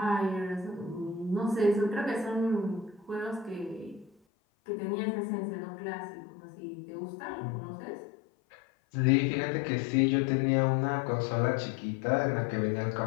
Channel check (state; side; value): drops out; right; at 4.1 s